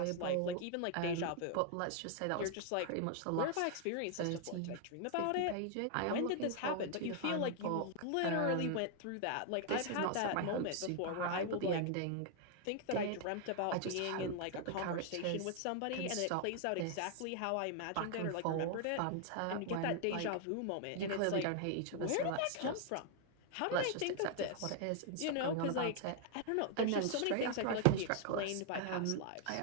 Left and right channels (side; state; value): both; different; correlation 0.00